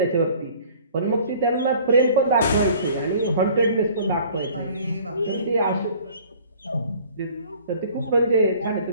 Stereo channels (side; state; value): both; inverted; correlation -0.51